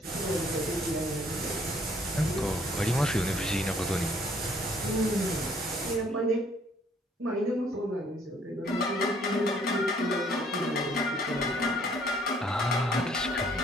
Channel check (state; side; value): normal; both; correlation 0.62